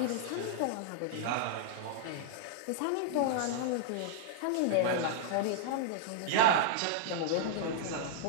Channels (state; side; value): different; both; correlation -0.01